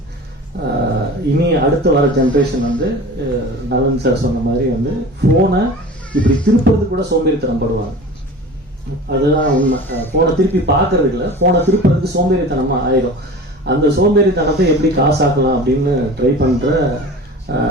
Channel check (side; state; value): both; normal; correlation 0.38